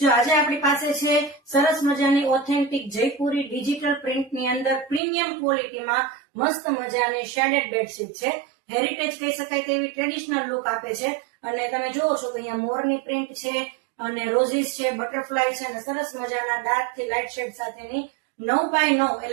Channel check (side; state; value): left; drops out; at 5.0 s